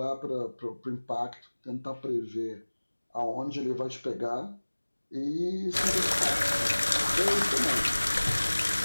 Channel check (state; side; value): inverted; both; correlation -1.00